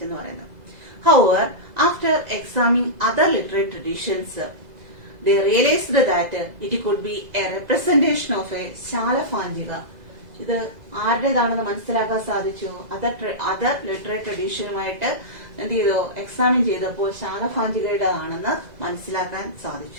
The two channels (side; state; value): left; late; 2.0 ms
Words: എന്ന് പറയുന്നത്. However, after examining other literary traditions, they realized that it could be a representation of a ശാലഭാഞ്ജിക. ഇത് ആരുടേതാണെന്ന് മനസ്സിലാക്കാൻ സാധിച്ചു. അതർ ലിറ്റററി ട്രഡീഷനുമായിട്ട് എന്ത് ചെയ്തു, എക്സാമിൻ ചെയ്തപ്പോൾ ശാലഭാഞ്ജികയുടേതാണെന്ന് മനസ്സിലാക്കാൻ